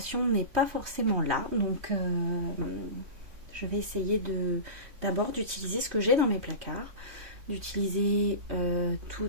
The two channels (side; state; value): left; late; 3.1 ms